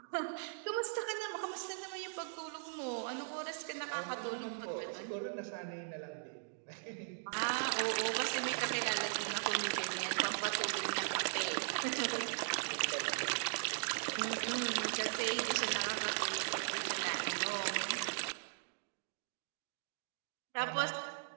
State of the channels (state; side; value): silent; left; digital silence